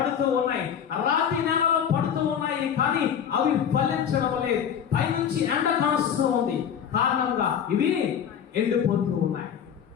ఉన్నాయి. రాతి నేలలో పడుతూ ఉన్నాయి కానీ అవి ఫలించడం లేదు. పైనుంచి ఎండ కాస్తూ ఉంది కారణంగా ఇవి ఎండిపోతూ ఉన్నాయి,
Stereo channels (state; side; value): quieter; right; 8.3 dB